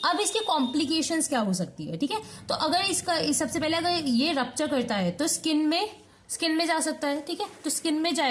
अब इसकी कॉम्प्लिकेशंस क्या हो सकती है, ठीक है। तो अगर इसका सबसे पहले अगर ये रप्चर करता है तो स्किन में जा सकता है, ठीक है। तो स्किन में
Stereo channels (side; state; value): both; identical; correlation 1.00